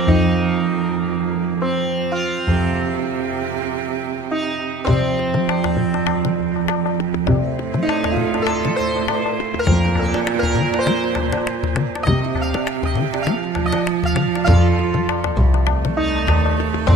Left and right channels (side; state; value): both; normal; correlation 0.58